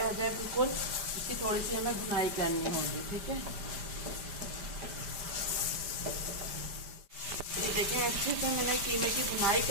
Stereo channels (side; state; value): left; late; 5.1 ms